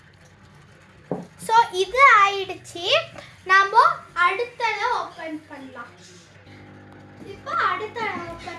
ஸோ இது ஆயிடுச்சு. நாம அடுத்ததை ஓபன் பண்ணலாம். இப்போ அடுத்த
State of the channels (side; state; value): both; identical; correlation 1.00